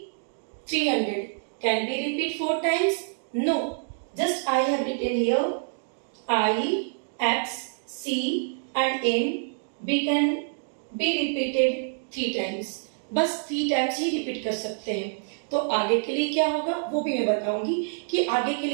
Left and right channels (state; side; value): silent; left; digital silence